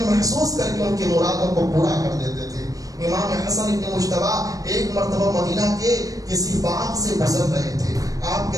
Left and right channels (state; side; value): late; left; 0.17 ms